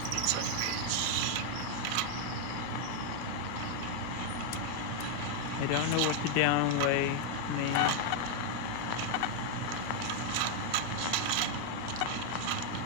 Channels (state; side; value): different; both; correlation 0.00